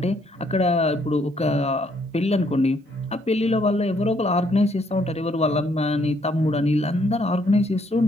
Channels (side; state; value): both; normal; correlation 0.69